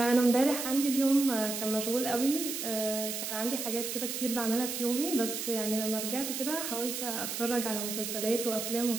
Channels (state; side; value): noise; right; hiss, 4 dB below the sound